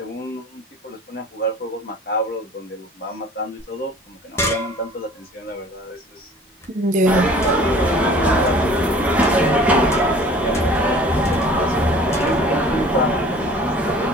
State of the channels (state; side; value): normal; both; correlation 0.48